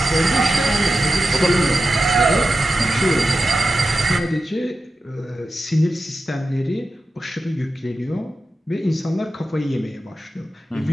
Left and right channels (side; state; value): both; normal; correlation 0.91